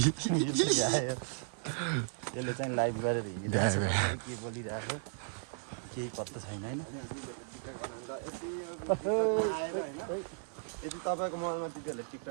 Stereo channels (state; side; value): silent; left; digital silence